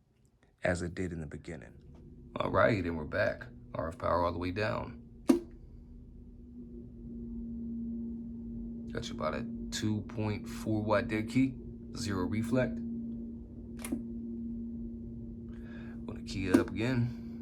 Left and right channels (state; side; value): identical; both; correlation 1.00